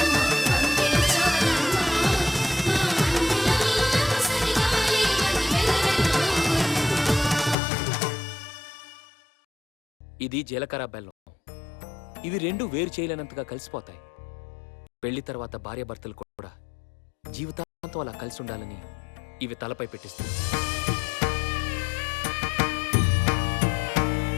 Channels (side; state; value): right; drops out; at 7.6 s